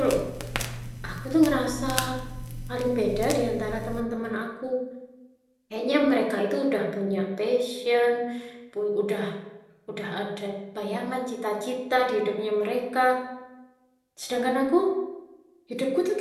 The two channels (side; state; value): both; identical; correlation 1.00